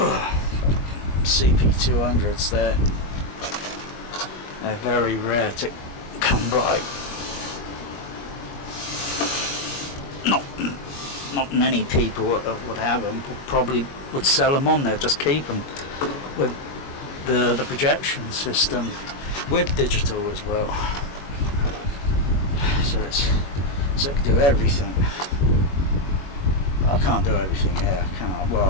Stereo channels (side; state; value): right; late; 21 ms